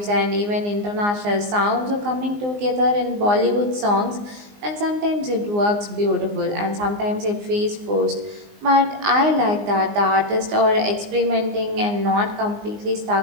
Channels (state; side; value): late; left; 19 ms